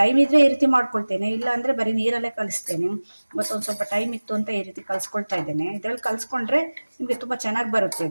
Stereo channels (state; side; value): inverted; both; correlation -1.00